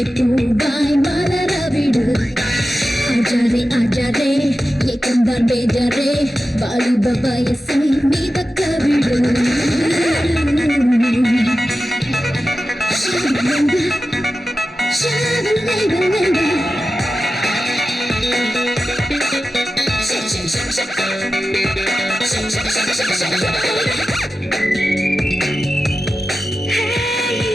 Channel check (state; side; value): normal; both; correlation 0.93